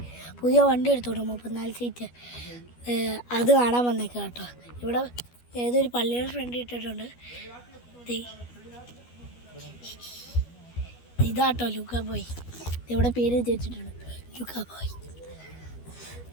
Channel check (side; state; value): right; late; 12 ms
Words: പുതിയ വണ്ടി എടുത്തോട്ടോ, 34 സീറ്റ്. അത് കാണാൻ വന്നേക്കാം കേട്ടോ. ഇവിടെ ഏതൊരു പള്ളിയുടെ ഫ്രണ്ട് ഇട്ടിട്ടുണ്ട്. ഇതാട്ടോ ലൂക്കാ ബോയ്. ഇവിടെ പേര് വെച്ചിട്ടുണ്ട്, ലൂക്കാ ബോയ്.